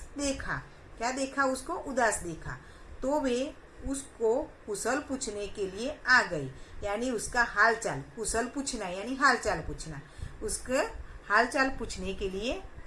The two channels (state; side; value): identical; both; correlation 1.00